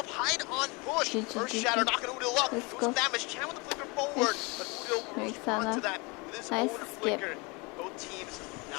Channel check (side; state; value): right; quieter; 28.0 dB